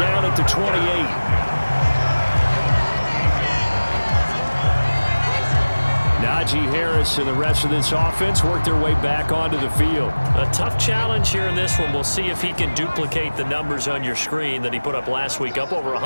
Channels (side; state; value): both; inverted; correlation -1.00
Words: at the 28. Najee Harris and the rest of this offense work their way back onto the field. A tough challenge here in this one. We'll see if he can duplicate the numbers on your screen that he put up last week, up over